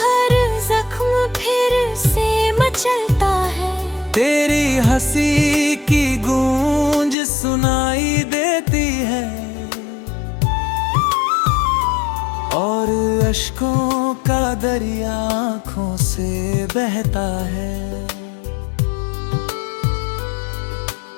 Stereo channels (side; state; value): right; drops out; at 7.2 s